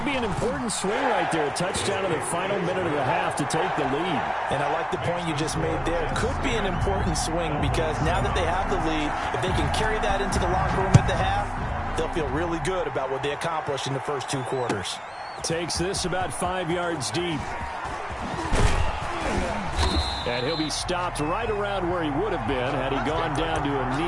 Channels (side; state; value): both; identical; correlation 1.00